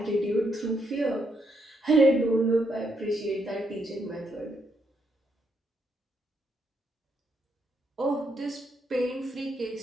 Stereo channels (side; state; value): both; normal; correlation 0.76